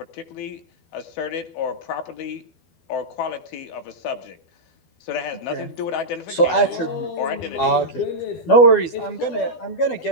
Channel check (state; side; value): late; right; 12 ms